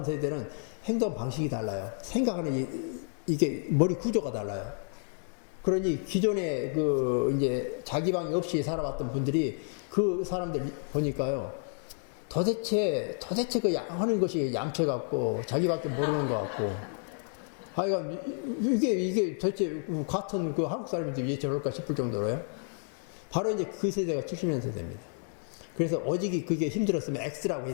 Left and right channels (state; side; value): silent; right; 57 dB below the other